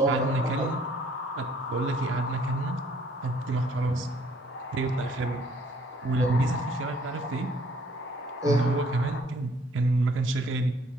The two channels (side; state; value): both; normal; correlation 0.61